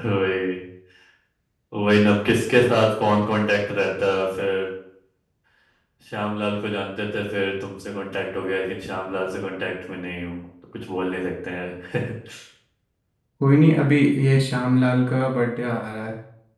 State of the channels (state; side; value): identical; both; correlation 1.00